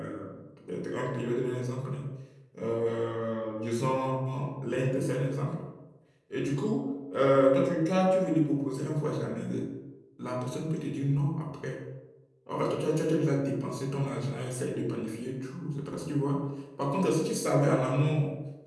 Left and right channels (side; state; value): both; identical; correlation 1.00